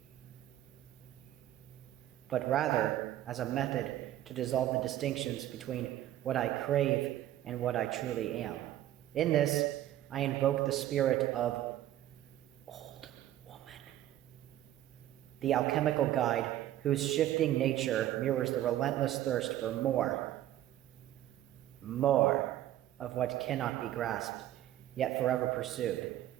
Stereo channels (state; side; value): quieter; left; 13.2 dB